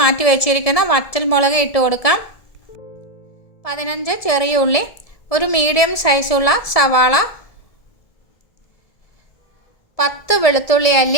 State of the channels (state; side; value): late; right; 1.7 ms